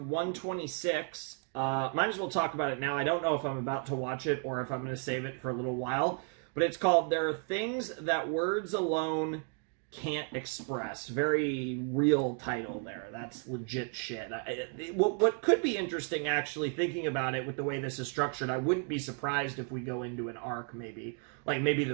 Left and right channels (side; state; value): left; quieter; 37.9 dB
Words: 126 Might as well talk about it now. I don't know if I'm about to watch it or if I'm going to save it for a little while. But it's called There Are Things That Words Alone Can't Express. Very real title there. That's legit shit. What could be interesting, actually, thinking about it with the way this is structured, I wouldn't be surprised if we go into an arc, maybe. Like, maybe